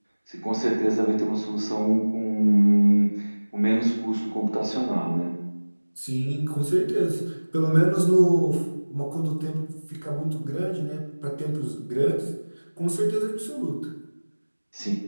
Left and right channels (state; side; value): inverted; both; correlation -1.00